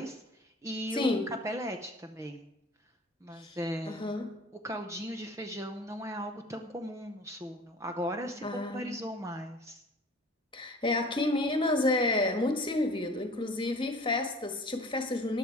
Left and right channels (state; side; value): normal; both; correlation 0.45